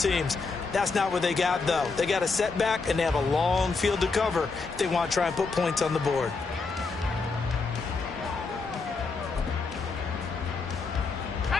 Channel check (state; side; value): quieter; right; 4.3 dB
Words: That's not what they got, though. They got a setback, and they have a long field to cover if they want to try and put points on the board.